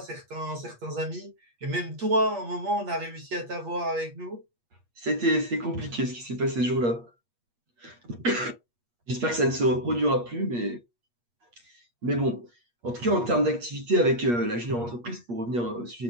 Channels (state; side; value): late; left; 8.4 ms